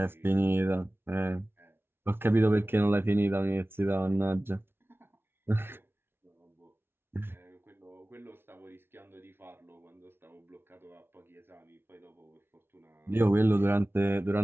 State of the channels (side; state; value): left; late; 0.11 ms